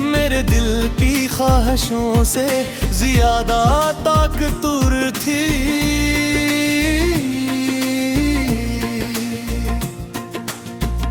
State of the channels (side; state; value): both; identical; correlation 1.00